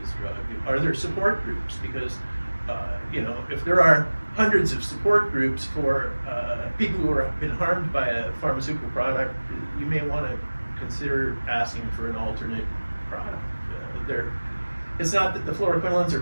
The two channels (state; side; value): inverted; both; correlation -1.00